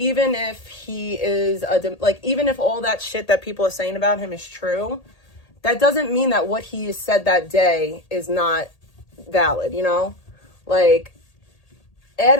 if he is even if all that shit that people are saying about him is true, that doesn't mean that what he said that day is not valid, you know? Like, ad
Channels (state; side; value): late; right; 1.8 ms